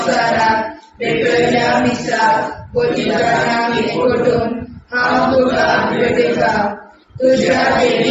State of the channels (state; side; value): identical; both; correlation 1.00